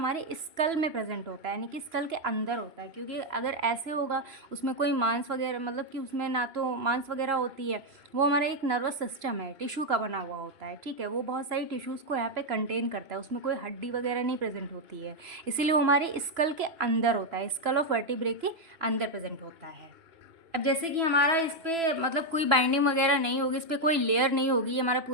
स्कल में प्रेजेंट होता है, यानी कि स्कल के अंदर होता है। क्योंकि अगर ऐसे होगा, उसमें कोई मांस वगैरह, मतलब कि उसमें ना तो मांस वगैरह होती है, वो हमारा एक नर्वस सिस्टम है, टिश्यू का बना हुआ होता है। ठीक है, वो बहुत सारी टिश्यूज़ को यहाँ पे कंटेन करता है, उसमें कोई हड्डी वगैरह नहीं प्रेजेंट होती है, इसीलिए वो हमारे स्कल के अंदर होता है, स्कल ऑफ वर्टिब्रे के अंदर प्रेजेंट होता है। अब जैसे कि हमारा इस पर मतलब कोई बाइंडिंग वगैरह नहीं होगी, इस पर कोई लेयर नहीं होगी, ये हमारा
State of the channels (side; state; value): left; late; 3.0 ms